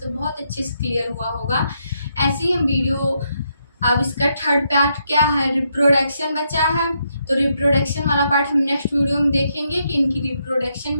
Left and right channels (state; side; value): inverted; both; correlation -0.78